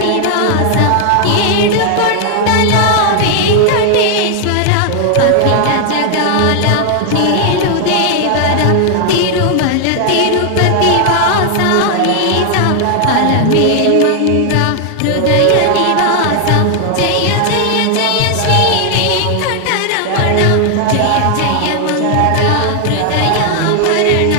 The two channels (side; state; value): both; different; correlation 0.00